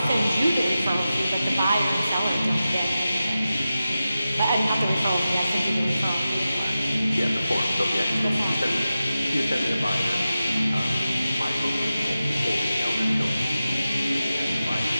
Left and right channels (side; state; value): both; inverted; correlation -0.93